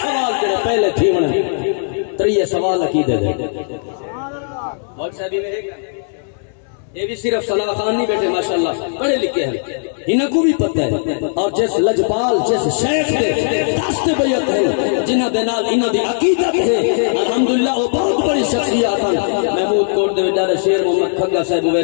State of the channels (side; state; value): right; silent; digital silence